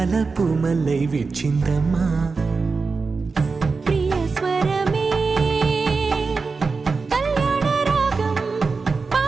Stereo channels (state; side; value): quieter; left; 4.5 dB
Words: పూమల్లై విచ్చిందమ్మా. ప్రియ స్వరమే కళ్యాణ రాగం